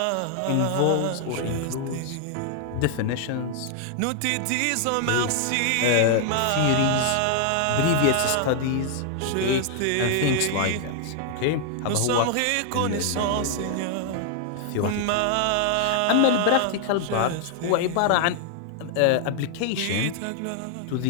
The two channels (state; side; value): different; both; correlation 0.00